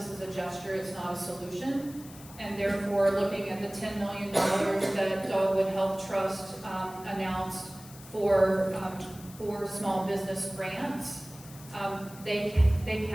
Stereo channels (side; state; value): left; noise; hiss, 19 dB below the sound